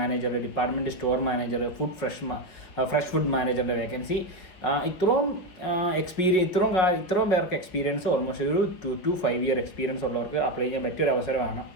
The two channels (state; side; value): late; right; 5.6 ms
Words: department store manager, fresh food മാനേജറിൻ്റെ വേക്കൻസി. ഇത്രയും പേർക്ക് എക്സ്പീരിയൻസ്, ഓൾമോസ്റ്റ് ഒരു 2 to 5 ഇയർ എക്സ്പീരിയൻസ് ഉള്ളവർക്ക് അപ്ലൈ ചെയ്യാൻ പറ്റിയൊരു അവസരമാണ്.